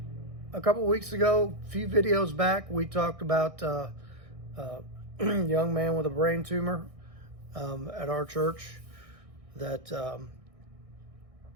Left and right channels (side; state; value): left; late; 1.6 ms